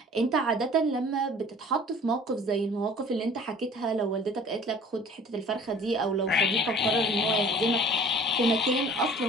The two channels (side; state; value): both; normal; correlation 0.49